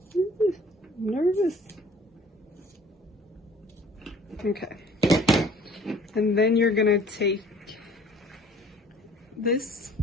Ooh, I'm nervous. Okay. And then you're gonna take this,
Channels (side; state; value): both; normal; correlation 0.52